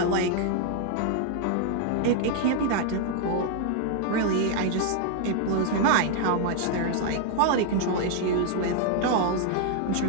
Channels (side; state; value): both; different; correlation 0.00